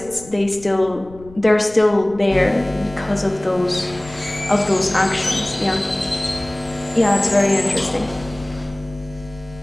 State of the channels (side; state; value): left; noise; rumble, 20 dB below the sound